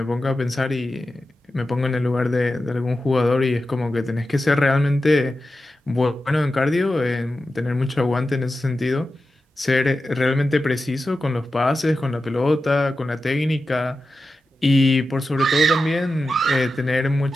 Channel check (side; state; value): both; normal; correlation 0.92